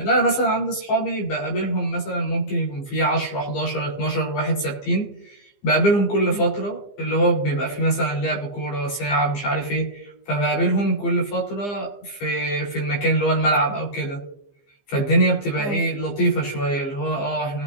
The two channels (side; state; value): right; late; 15 ms